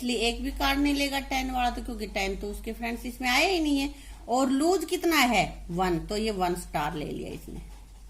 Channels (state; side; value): identical; both; correlation 1.00